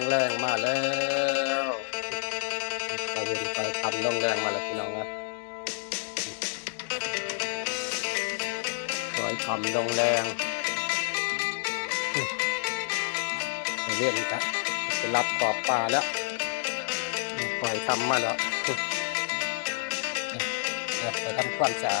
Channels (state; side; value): silent; right; digital silence